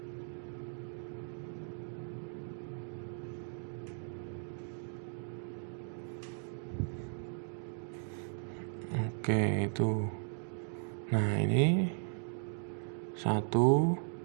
Oke, itu. Nah, ini 1,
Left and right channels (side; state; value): left; silent; 53 dB below the other